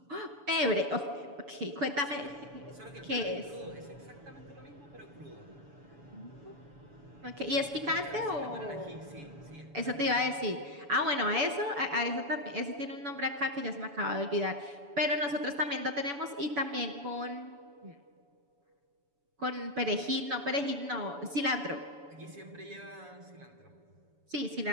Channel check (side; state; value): left; late; 7.0 ms